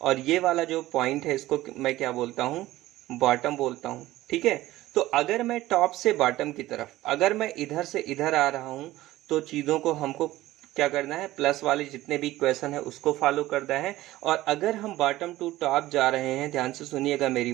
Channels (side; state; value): left; quieter; 16.3 dB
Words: ये वाला जो पॉइंट है इसको मैं क्या बोलता हूँ, बॉटम बोलता हूँ। ठीक है, तो अगर मैं टॉप से बॉटम की तरफ, अगर मैं इधर से इधर आ रहा हूं तो चीजों को हमको क्या करना है, प्लस वाले जितने भी इक्वेशन है उसको फॉलो करना है। और अगर हम बॉटम टू टॉप जा रहे हैं, ध्यान से सुनिएगा मेरी